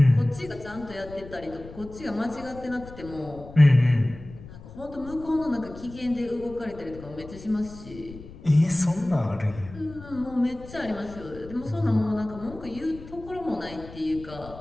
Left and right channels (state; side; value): noise; left; rumble, 16 dB below the sound